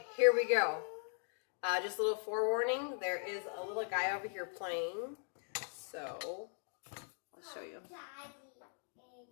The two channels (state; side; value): silent; right; 51 dB below the other